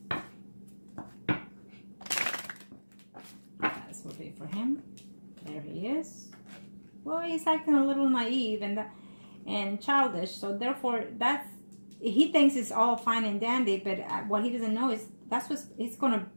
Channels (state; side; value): inverted; both; correlation -1.00